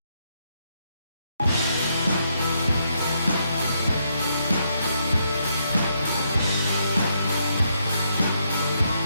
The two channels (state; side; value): inverted; both; correlation -0.77